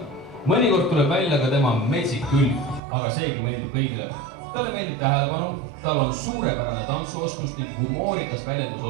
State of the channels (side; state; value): left; drops out; at 2.8 s